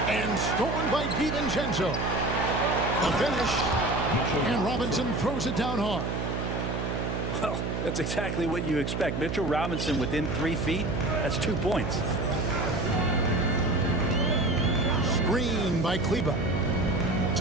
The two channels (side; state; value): right; noise; hum, 2 dB below the sound